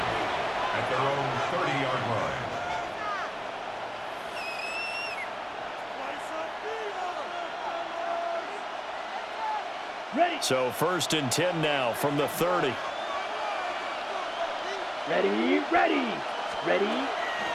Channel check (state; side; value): identical; both; correlation 1.00